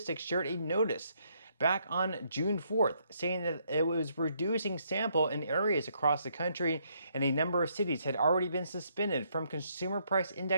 shared a notice back on June 4th, saying that it was reducing sample in areas across the country, and a number of cities had already been suspended from consumer price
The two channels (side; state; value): both; inverted; correlation -0.73